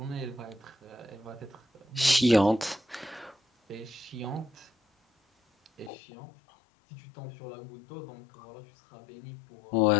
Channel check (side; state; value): right; drops out; at 5.9 s